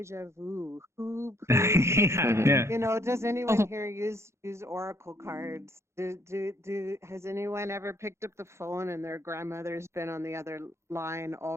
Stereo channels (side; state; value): left; late; 0.13 ms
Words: vu? Who plays? You know, does anyone here use oracle cards? Has anyone ever picked up the phone and their grandmother's been on the other line